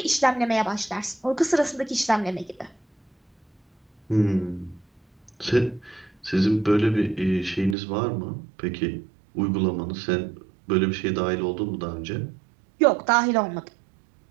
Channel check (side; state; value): left; drops out; at 7.8 s